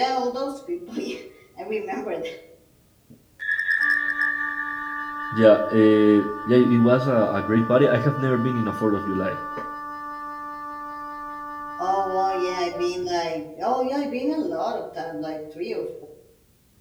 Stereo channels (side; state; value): both; identical; correlation 1.00